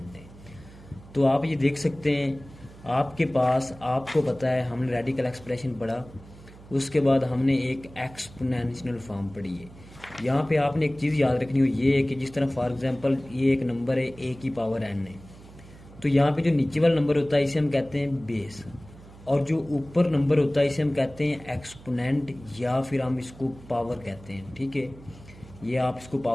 है। तो आप ये देख सकते हैं आपके पास, आपको पता है हमने रेडिकल एक्सप्रेशन पढ़ा, उसके बाद हमने एक एक्सपोनेंशियल फॉर्म पढ़ी है। यहाँ पे आपने एक चीज़ याद रखनी हो, ये है कि जिस तरह फॉर एग्जांपल ये एक नंबर है a की पावर n है, तो यहाँ पे जो नीचे वाला नंबर होता है इसे हम कहते हैं बेस, और जो ऊपर नंबर होता है इसे हम कहते हैं एक्सपोनेंट या फिर हम इसको पावर कहते हैं। ठीक है, ये आप इसको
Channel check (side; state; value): right; noise; hum, 20 dB below the sound